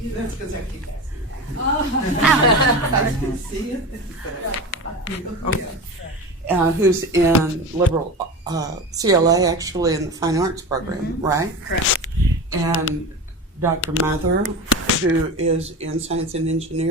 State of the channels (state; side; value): normal; both; correlation 0.27